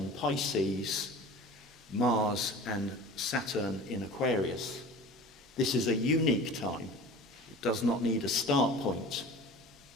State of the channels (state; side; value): normal; both; correlation 0.39